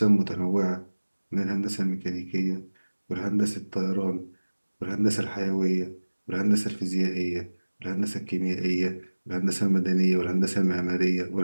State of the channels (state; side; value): inverted; both; correlation -1.00